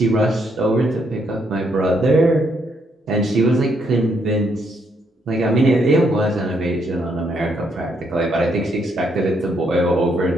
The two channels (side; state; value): both; normal; correlation 0.74